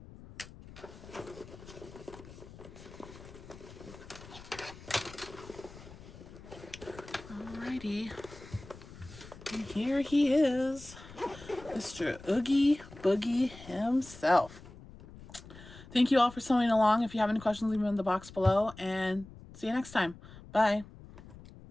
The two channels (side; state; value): left; noise; rumble, 17 dB below the sound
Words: Alrighty. And here he is, Mr. Oogie Boogie himself. Thank you all for sewing along. If you have any questions, leave them in the box below, and see you next time. Bye.